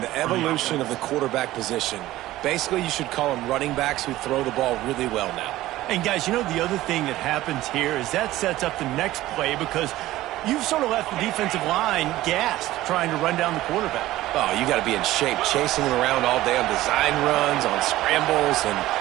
evolution of the quarterback position. Basically, you should call them running backs who throw the ball really well now. And, guys, you know the other thing that happens here is that sets up the next play because you've sort of left the defensive line gassed trying to run down the quarterback. Oh, you got to be in shape, chasing him around all day on design runs, on scrambles, and,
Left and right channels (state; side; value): quieter; left; 16.0 dB